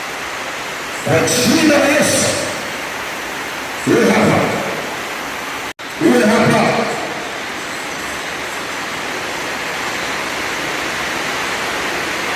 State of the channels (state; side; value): identical; both; correlation 1.00